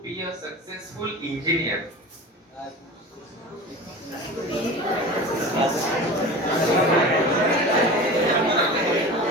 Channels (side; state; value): both; normal; correlation 0.34